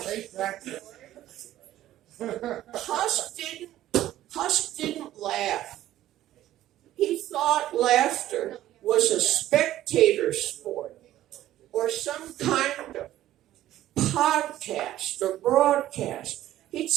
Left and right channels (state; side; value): quieter; left; 13.6 dB